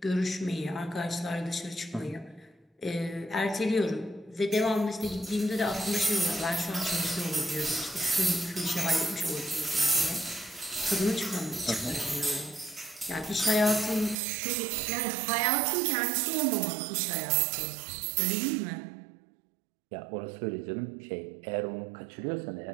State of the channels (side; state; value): left; drops out; at 14.2 s